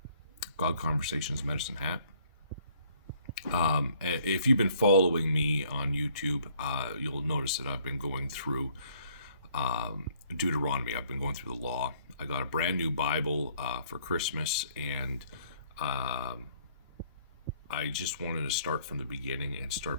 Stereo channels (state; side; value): inverted; both; correlation -0.62